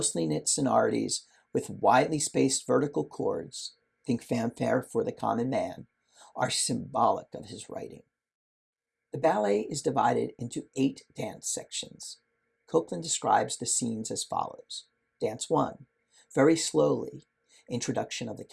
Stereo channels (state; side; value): identical; both; correlation 1.00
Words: knit sonorities with widely spaced vertical chords, think fanfare for the common man, are symbolic of his writing. The ballet is divided into 8 dance sections. Copland describes the scenes as follows. Dance 1, very slowly, introduction of the